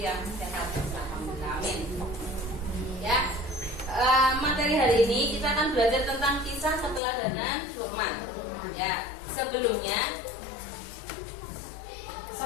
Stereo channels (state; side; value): drops out; right; at 7.0 s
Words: yang sehat. Alhamdulillah, amin. Ya, materi hari ini kita akan belajar tentang kisah keteladanan Luqman. Ya, sebelumnya